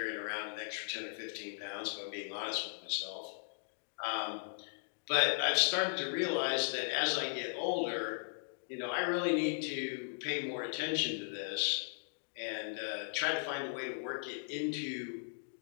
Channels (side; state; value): right; silent; digital silence